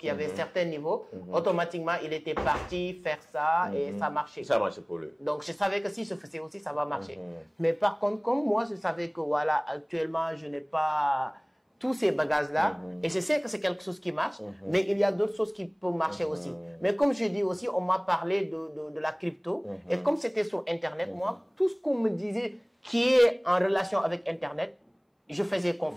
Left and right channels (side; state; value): both; identical; correlation 1.00